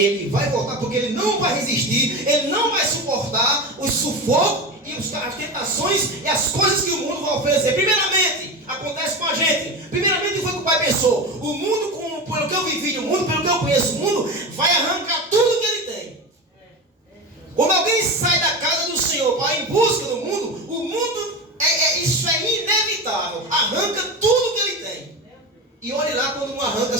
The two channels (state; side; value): normal; both; correlation 0.24